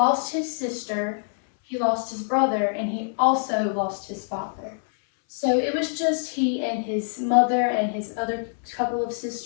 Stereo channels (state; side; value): silent; right; 62 dB below the other